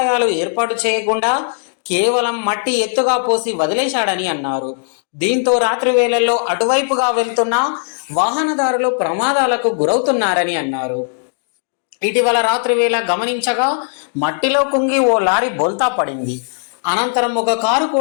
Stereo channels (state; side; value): silent; right; digital silence